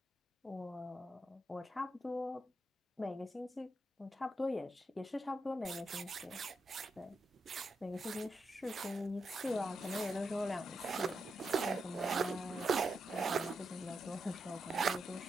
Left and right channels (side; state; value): both; normal; correlation 0.84